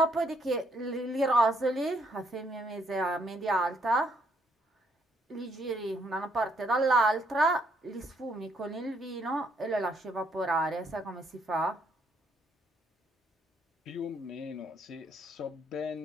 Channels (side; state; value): both; normal; correlation 0.70